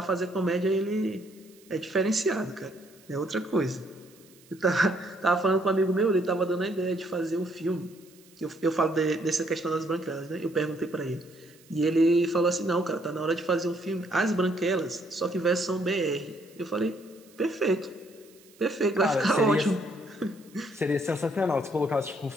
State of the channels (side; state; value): right; noise; hiss, 27 dB below the sound